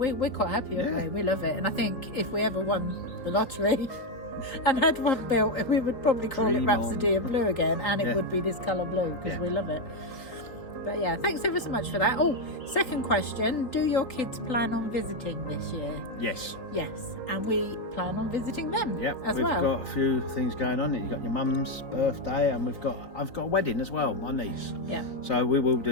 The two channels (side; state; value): right; late; 4.1 ms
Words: quite happy, aren't we? We love it. And I think if we ever won the lottery and had one built, we would probably call it Rhapsody in Blue again, and it would be this colour blue because we love it. But yeah, thanks ever so much for that. Oh, second question, do your kids plan on visiting this year? Yes. Yes, and we plan on visiting them as we've well. got a few things going on. You've got your mum's birthday, and I've got a wedding as well, my niece. Yeah. So we'll